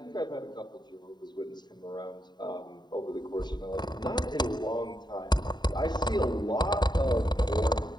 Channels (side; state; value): right; late; 0.21 ms